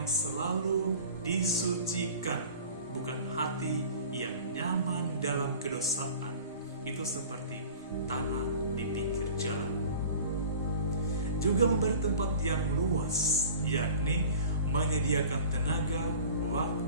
selalu disucikan, bukan hati yang nyaman dalam kedosaan. Itu seperti tanah di pinggir jalan. Juga memberi tempat yang luas, yakni menyediakan tenaga,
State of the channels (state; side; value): inverted; both; correlation -0.42